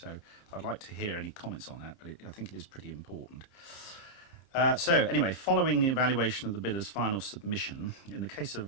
I'd like to hear any comments on that, but I think it is pretty important. So anyway, following the evaluation of the bidder's final submission, in the case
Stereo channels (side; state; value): right; late; 30 ms